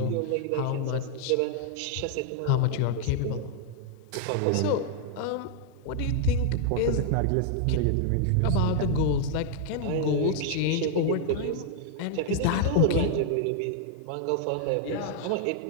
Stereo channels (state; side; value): different; both; correlation 0.00